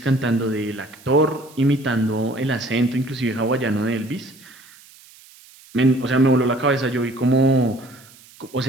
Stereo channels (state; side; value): noise; right; hiss, 24 dB below the sound